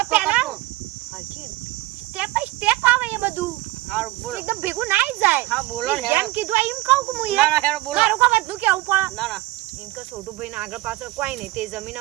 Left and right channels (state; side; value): quieter; left; 18.5 dB